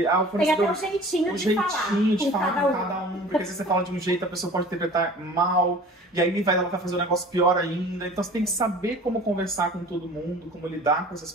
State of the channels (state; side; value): normal; both; correlation 0.44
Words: o Tem até um jeitinho de falar com cada um, porque se você fala de um jeito, a pessoa pode interpretar mal, e aí ela vai fazer um negócio pior ainda. Então você tem que saber como conversar com todo mundo, como lidar com essas